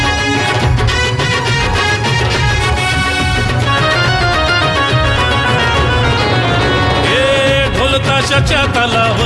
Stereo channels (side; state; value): both; identical; correlation 1.00